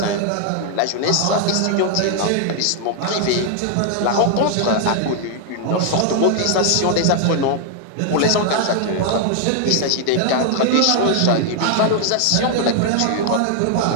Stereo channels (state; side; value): different; both; correlation 0.00